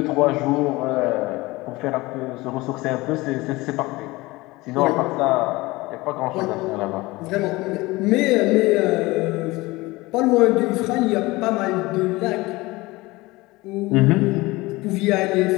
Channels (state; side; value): quieter; right; 21.3 dB